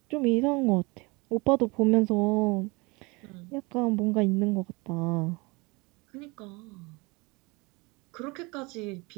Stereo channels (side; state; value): left; quieter; 26.3 dB